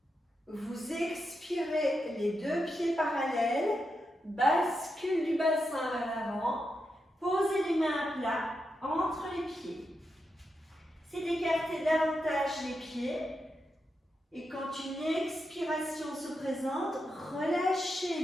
Vous expirez les deux pieds parallèles, bascule du bassin vers l'avant, posez les mains à plat entre les pieds. C'est d'écarter davantage les pieds. Et quand une expiration se présente,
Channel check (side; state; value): both; normal; correlation 0.86